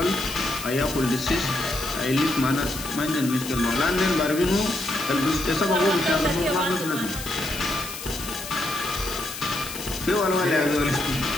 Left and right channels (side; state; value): left; noise; hiss, 10 dB below the sound